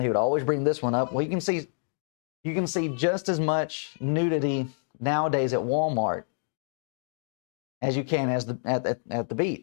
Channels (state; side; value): silent; right; 60 dB below the other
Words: he would always bring this one up. Well, you can see just as much nudity nowadays at Walmart as you can at the